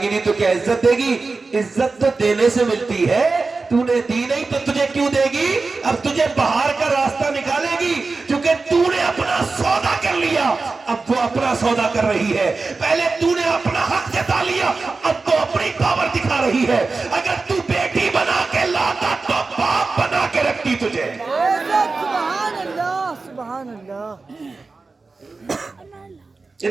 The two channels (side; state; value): left; quieter; 3.9 dB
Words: नहीं तो क्या इज्जत देगी? इज्जत तो देने से मिलती है, तूने दी नहीं तो तुझे क्यों देगी? अब तुझे बाहर का रास्ता निकालेगी क्योंकि तूने अपना सौदा कर लिया, अब वो अपना सौदा कर रही है। पहले तूने अपना हक जता लिया, अब तो अपनी पावर दिखा रही है। अगर तू बेटी बना के लाता तो बाप बना के रखती तुझे। सुभान अल्लाह, सुभान अल्लाह।